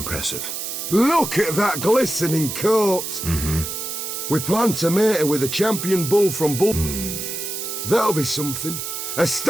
Look at that glistening coat. Mm-hmm. We plan to mate her with a champion bull from Bull. That'll be something. A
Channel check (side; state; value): right; noise; hiss, 5 dB below the sound